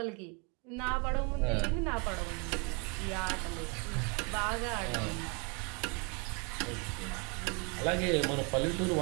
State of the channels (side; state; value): left; quieter; 33.5 dB